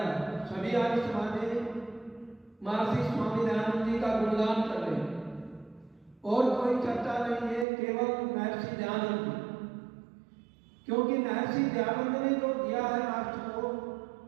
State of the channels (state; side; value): drops out; left; at 7.7 s